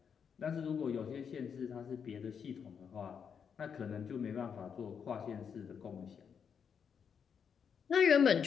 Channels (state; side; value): quieter; right; 7.0 dB